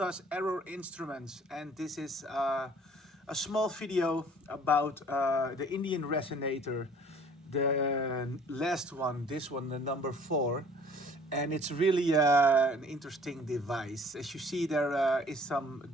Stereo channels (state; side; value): normal; both; correlation 0.53